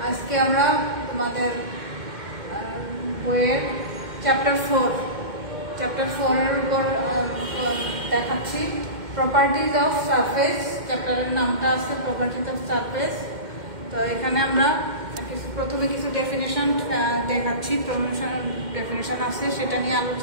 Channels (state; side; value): late; left; 2.1 ms